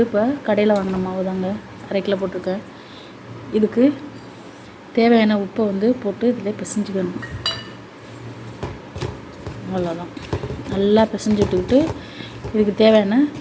இப்போ கடையில் வாங்கின மாவு தாங்க, 1/2 கிலோ போட்டிருக்கேன். இதுக்கு தேவையான உப்பை வந்து போட்டு இதில் பிசைஞ்சிக்கணும். அவ்வளோதான். நல்லா பிசைஞ்சு விட்டுக்கிட்டு இதுக்கு தேவையான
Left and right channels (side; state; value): both; identical; correlation 1.00